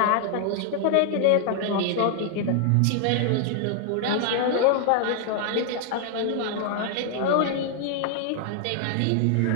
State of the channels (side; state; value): both; different; correlation 0.00